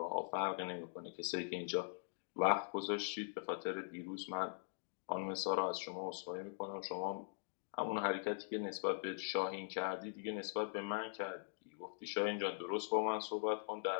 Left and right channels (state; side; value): silent; right; digital silence